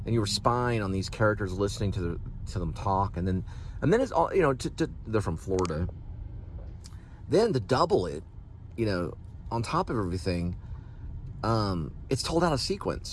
and you were spying on these characters, listening to them talk. And then it's all, they're from Florida. Then to double it, on top of everything, it's told out of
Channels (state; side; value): identical; both; correlation 1.00